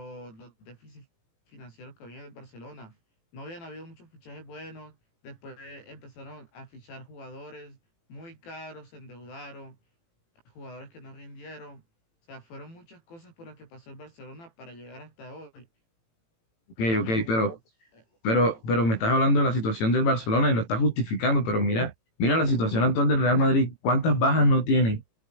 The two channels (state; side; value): late; right; 18 ms